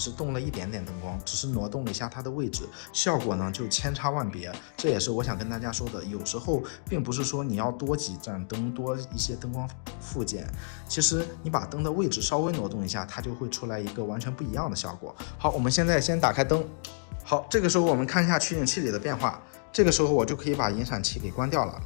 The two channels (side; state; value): right; silent; digital silence